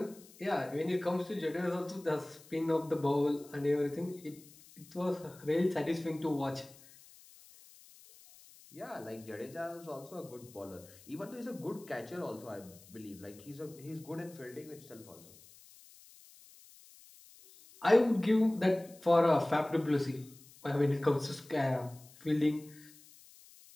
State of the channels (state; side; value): noise; left; hiss, 23 dB below the sound